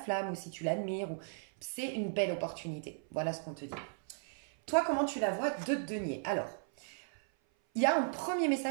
ou si tu l'admires, c'est une belle opportunité. Voilà ce qu'on te dit. Toi, comment tu la vois de denier? Alors, il y a un premier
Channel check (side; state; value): left; silent; 54 dB below the other